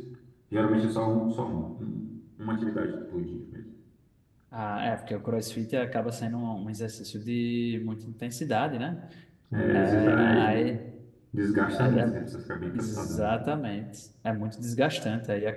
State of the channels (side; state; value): both; identical; correlation 1.00